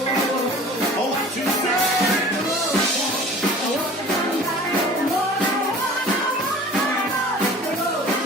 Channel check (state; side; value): normal; both; correlation 0.44